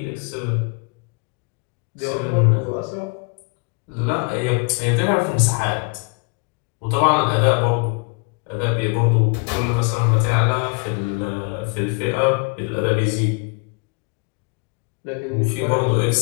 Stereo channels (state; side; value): quieter; right; 31.9 dB